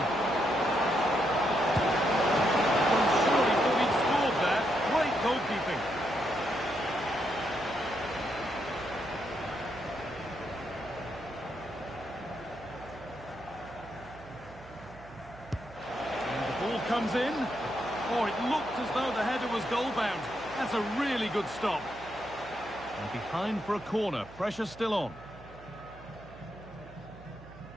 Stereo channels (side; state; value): right; noise; hum, 20 dB below the sound